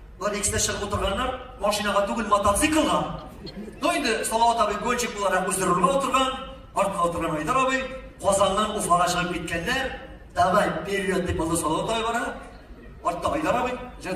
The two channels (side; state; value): both; identical; correlation 1.00